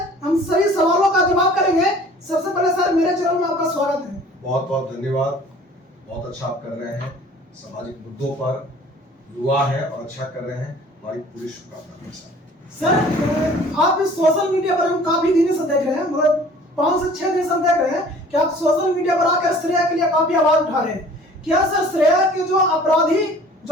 सभी सवालों का जवाब करेंगे। सबसे पहले सर मेरे चैनल में आपका स्वागत है। बहुत बहुत धन्यवाद। बहुत अच्छा आप कर रहे हैं, सामाजिक मुद्दों पर युवा है और अच्छा कर रहे हैं। हमारी पूरी शुभकामनाएं सर। आप सोशल मीडिया पर हम काफी दिन से देख रहे हैं, मतलब 5 से 6 दिन से हम देख रहे हैं कि आप सोशल मीडिया पर आकर श्रेया के लिए काफी आवाज उठा रहे हैं। क्या सर श्रेया के जो अपराधी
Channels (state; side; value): normal; both; correlation 0.50